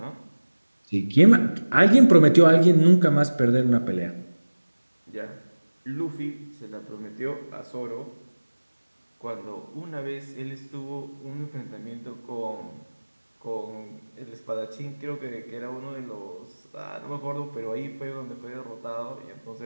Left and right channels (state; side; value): inverted; both; correlation -1.00